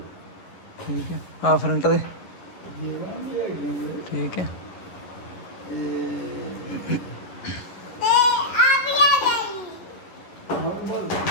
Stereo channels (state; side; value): late; right; 11 ms